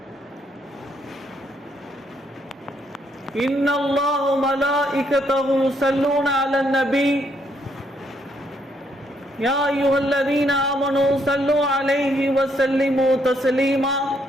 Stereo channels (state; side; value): normal; both; correlation 0.73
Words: إن الله وملائكته يصلون على النبي يا أيها الذين آمنوا صلوا عليه وسلموا تسليما